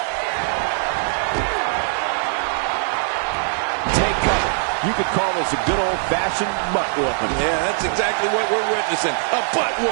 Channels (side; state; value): left; silent; 61 dB below the other